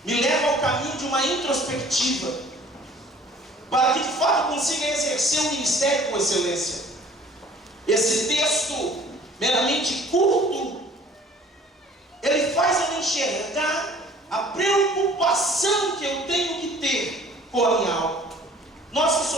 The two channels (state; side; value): normal; both; correlation 0.52